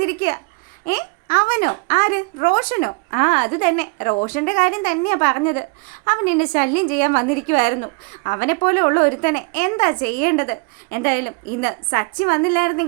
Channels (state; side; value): quieter; left; 30.9 dB